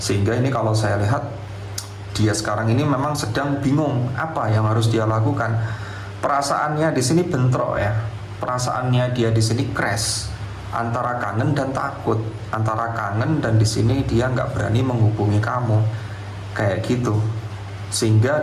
ini kalau saya lihat dia sekarang ini memang sedang bingung apa yang harus dia lakukan. Perasaannya di sini bentrok ya. Perasaannya dia di sini crash antara kangen dan takut, antara kangen dan di sini dia nggak berani menghubungi kamu, kayak gitu. Sehingga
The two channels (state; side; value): identical; both; correlation 1.00